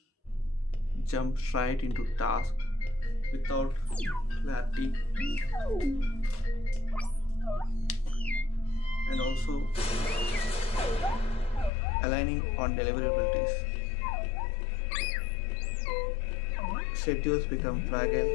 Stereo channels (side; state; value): right; drops out; at 11.7 s